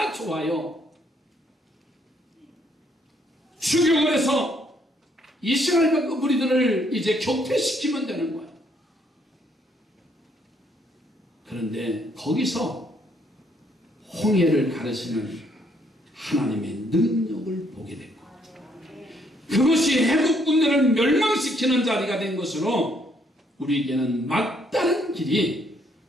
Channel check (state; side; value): normal; both; correlation 0.69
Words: 좋아요. 추격을 해서 이스라엘 무리들을 이제 격퇴시키면 되는 거예요. 그런데 거기서 홍해를 가르시는 하나님의 능력을 보게 됐고, 그것이 애굽 군대를 멸망시키는 자리가 된 것으로 우리에게는 막다른 길이